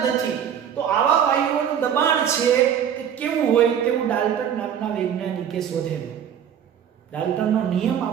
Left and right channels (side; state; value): left; quieter; 8.8 dB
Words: નથી, તો આવા વાયુઓનું દબાણ છે એ કેવું હોય તેવું ડાલ્ટન નામના વૈજ્ઞાનિકે શોધેલું. ડાલ્ટનનો નિયમ